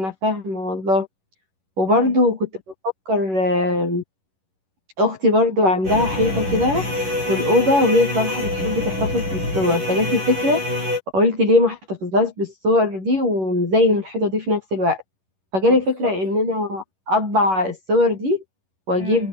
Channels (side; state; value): left; late; 11 ms